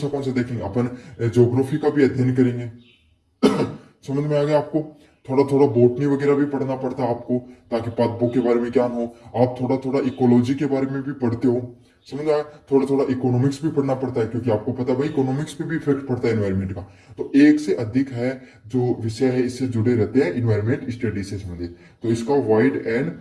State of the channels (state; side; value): identical; both; correlation 1.00